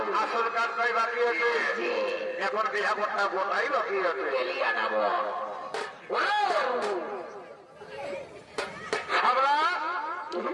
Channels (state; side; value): identical; both; correlation 1.00